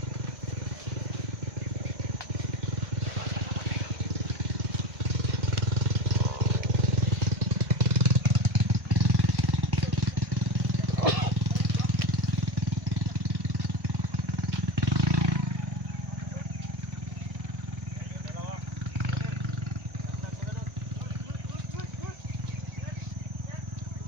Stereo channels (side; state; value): left; late; 1.5 ms